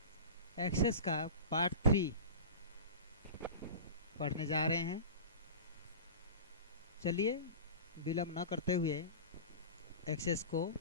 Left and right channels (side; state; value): both; inverted; correlation -0.31